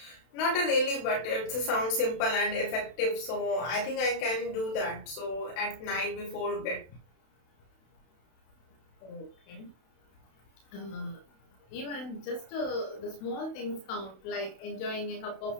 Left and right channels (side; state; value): right; late; 32 ms